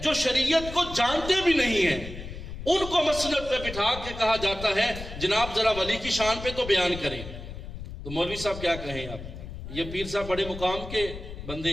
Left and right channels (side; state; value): left; noise; rumble, 10 dB below the sound